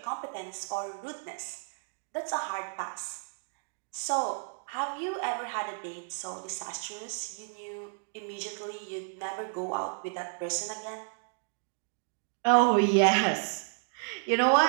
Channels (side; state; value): left; silent; 57 dB below the other